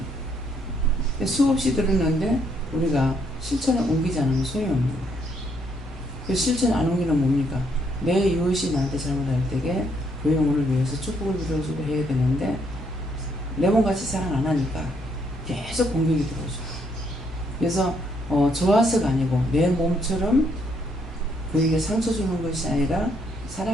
수없이 들었는데 우리가 실천에 옮기지 않으면 소용이 없는 거예요. 그 실천 안 옮기는 뭡니까? 내 이웃이 나한테 잘못할 때에 그 영혼을 위해서 축복을 빌어주고 해야 되는데 내 몸같이 사랑 안 하니까 계속 공격이 들어오죠. 그래서 좋아서가 아니고 내 몸처럼 그에게 상처 주는 것이 아니라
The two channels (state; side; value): normal; both; correlation 0.71